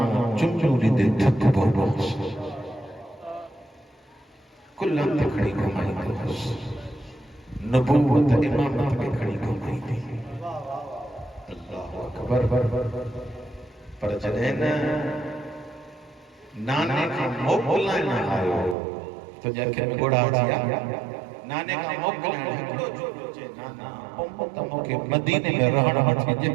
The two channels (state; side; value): drops out; left; at 18.8 s